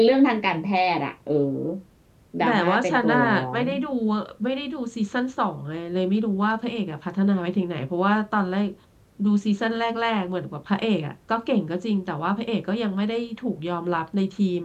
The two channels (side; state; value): both; identical; correlation 1.00